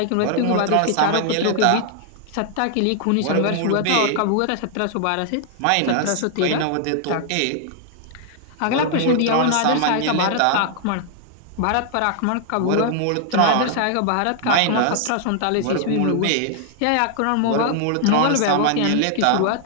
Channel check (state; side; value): different; both; correlation 0.00